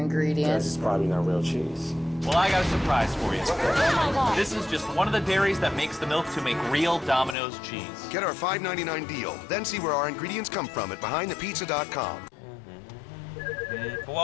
It's probably not real cheese. Well, I got a surprise for you. Oh my God. This is just one of the dairies that makes the milk to make real Domino's cheese. Get our $5.99 deal, then see where our ingredients come from at BehindThePizza.com.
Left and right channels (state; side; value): drops out; right; at 7.4 s